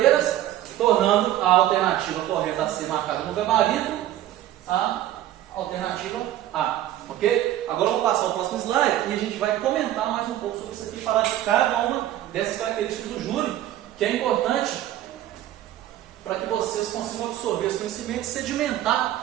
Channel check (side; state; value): left; quieter; 13.1 dB